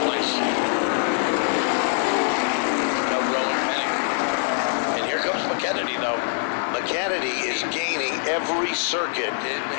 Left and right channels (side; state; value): right; silent; 62 dB below the other